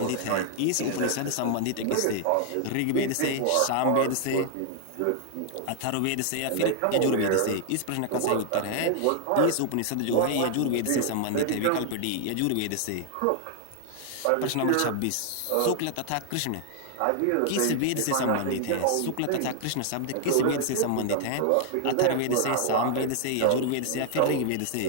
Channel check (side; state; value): both; different; correlation 0.00